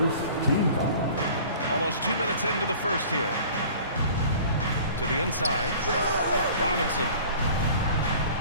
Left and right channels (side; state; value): both; inverted; correlation -0.46